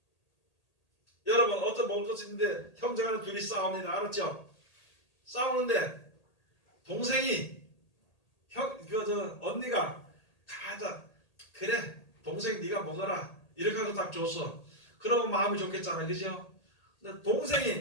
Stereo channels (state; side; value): late; right; 1.8 ms